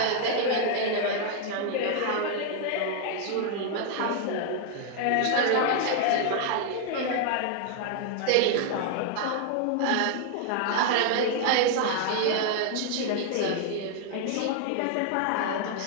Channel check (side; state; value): both; different; correlation 0.00